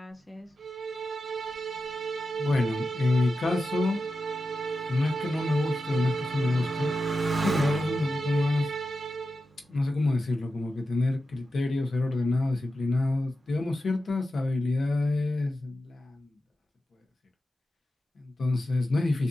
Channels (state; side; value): normal; both; correlation 0.91